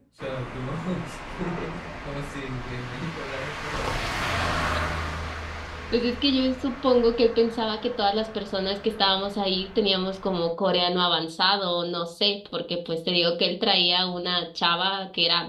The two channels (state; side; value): identical; both; correlation 1.00